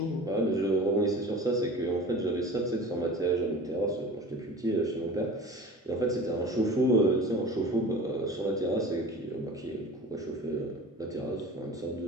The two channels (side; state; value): both; normal; correlation 0.38